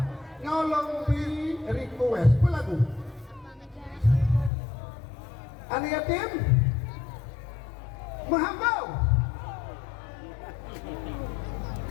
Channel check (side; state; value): right; drops out; at 4.5 s